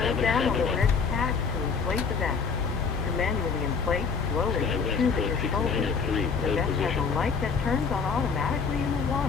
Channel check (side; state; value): right; quieter; 5.5 dB